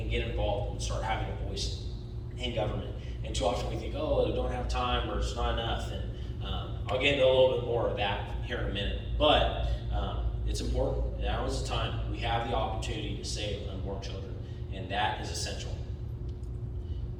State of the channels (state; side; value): identical; both; correlation 1.00